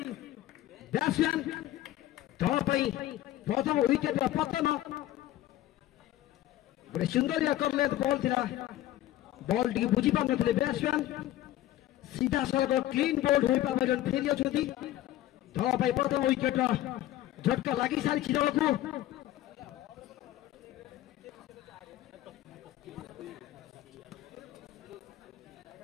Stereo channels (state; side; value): quieter; right; 14.3 dB